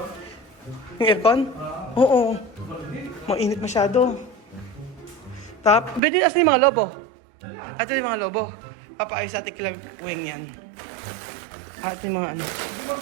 Yung aircon? Oo. Mainit masyado. Pwede asan yung mga lobo? Ito yung mga lobo. Papaayos sa Ate Weng yan. Ate yung mga ano.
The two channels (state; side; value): drops out; left; at 6.0 s